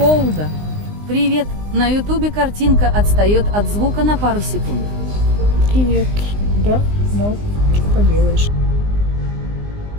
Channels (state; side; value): late; left; 19 ms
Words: Привет. На ютубе картинка отстает от звука на пару секунд. Привет. Да, ну, что поделаешь.